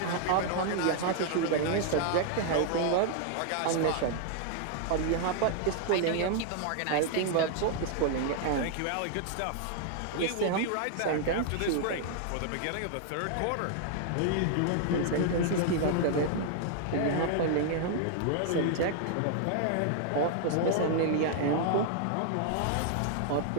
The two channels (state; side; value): different; both; correlation -0.01